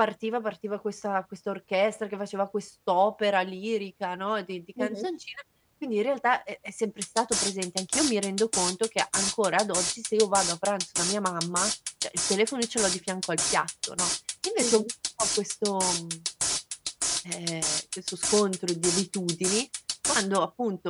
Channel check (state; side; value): identical; both; correlation 1.00